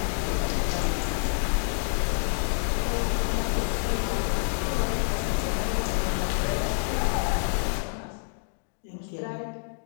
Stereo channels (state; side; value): silent; right; digital silence